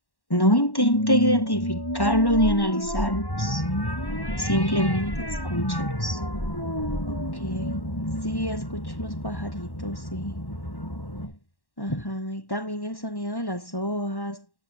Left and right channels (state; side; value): late; right; 1.1 ms